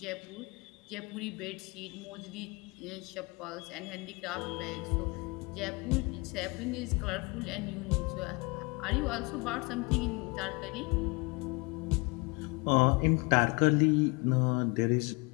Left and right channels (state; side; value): quieter; right; 28.2 dB